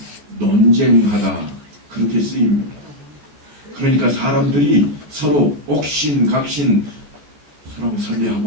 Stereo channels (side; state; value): left; late; 14 ms